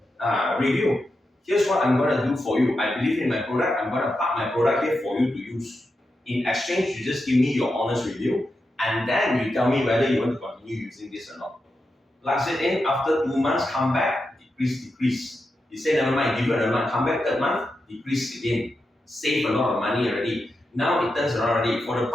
Here's what I'm going to do for you. I believe in my product. I'm going to park my product here for you to use. In exchange, you just give me your honest review, and then you tell me whether you want to continue using this or not. Plug it in, after 2 months, come back, decrease. You say, never mind, give it another month, come back 3rd month, decrease again. Save a lot of money already. Now it turns around already. For the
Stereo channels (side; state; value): both; normal; correlation 0.88